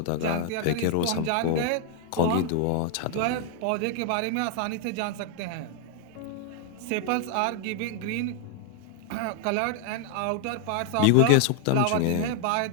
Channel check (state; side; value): different; both; correlation 0.00